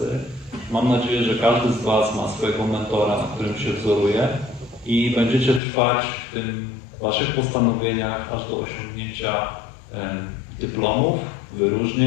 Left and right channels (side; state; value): right; drops out; at 5.6 s